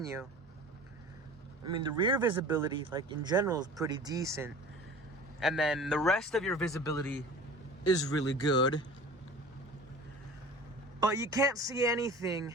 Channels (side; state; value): both; normal; correlation 0.41